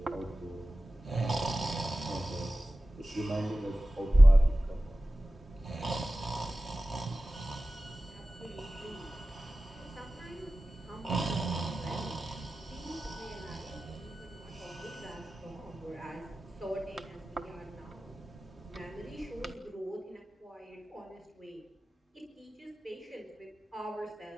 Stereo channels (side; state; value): both; normal; correlation 0.95